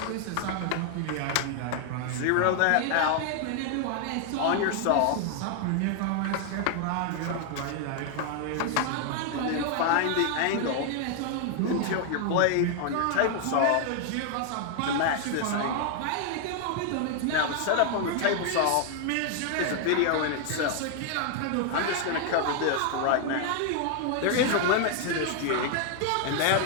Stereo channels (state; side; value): different; both; correlation 0.00